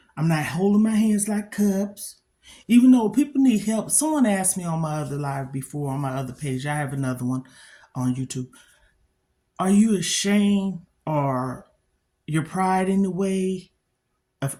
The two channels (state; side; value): identical; both; correlation 1.00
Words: I'm not holding my hands like cups. Even though people need help. Someone asked me on my other live before, on my other page, I have another one on YouTube. Are you ashamed or your pride in the way of